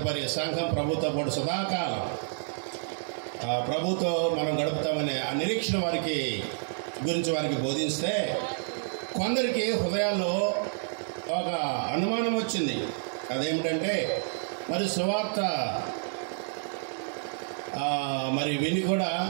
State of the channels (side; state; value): left; silent; digital silence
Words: సంఘం ప్రభుతో పాటు సదాకాలం ప్రభుతో మనం గడుపుతామనే ఆ నిరీక్షణ వారికి గురించి వారికి బోధిస్తే కొందరికి హృదయాల్లో ఒక అనుమానం వచ్చింది. అదేమిటంటే మరి సువార్త మరి విని కూడా